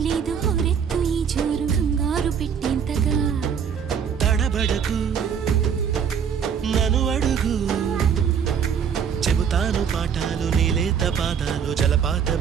ఇది హోరెత్తు ఈ జోరు కంగారు పెట్టేంతగా తడబడకు నన్ను అడుగు చెబుతాను పాఠాలు నీలేత పాదాలు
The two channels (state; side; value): quieter; left; 7.4 dB